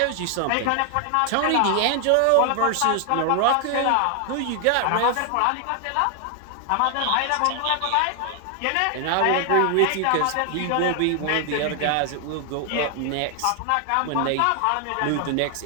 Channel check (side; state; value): both; different; correlation 0.00